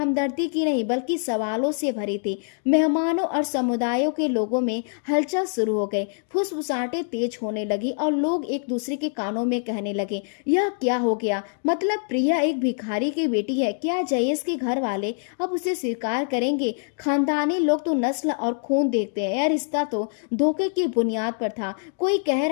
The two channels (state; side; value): silent; right; 62 dB below the other